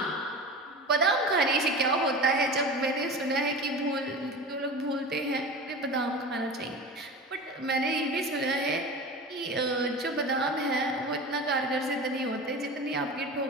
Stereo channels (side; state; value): both; normal; correlation 0.32